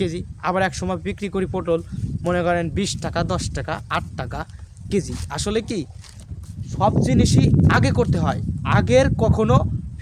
আবার এক সময় বিক্রি করি পটল মনে করেন 20 টাকা 10 টাকা 8 টাকা কেজি। আসলে কি সব জিনিসই আগে করতে হয়, আগের কখনো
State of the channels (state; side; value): identical; both; correlation 1.00